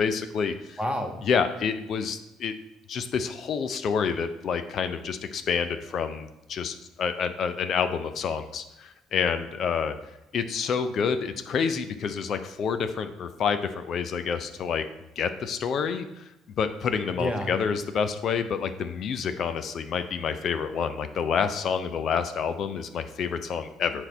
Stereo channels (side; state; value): right; quieter; 5.8 dB